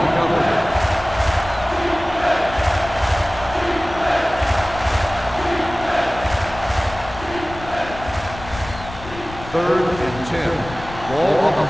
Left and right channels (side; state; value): left; noise; rumble, 14 dB below the sound